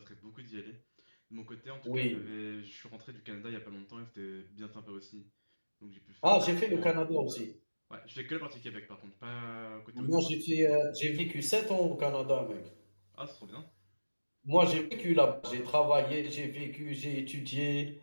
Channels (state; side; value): inverted; both; correlation -1.00